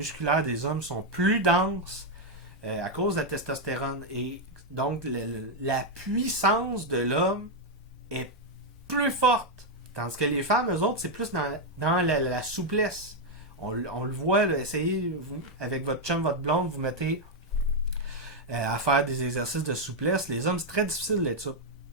des hommes sont plus denses à cause de la testostérone. Et donc, la puissance de l'homme est plus forte. Tandis que les femmes, eux autres, c'est plus dans la souplesse. On le voit, là, essayez, vous, avec votre chum, votre blonde, vous mettez à faire des exercices de souplesse. Les hommes, c'est très difficile d'être souple.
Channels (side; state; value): both; normal; correlation 0.01